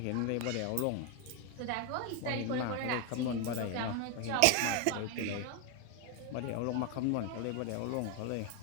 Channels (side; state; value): both; different; correlation 0.01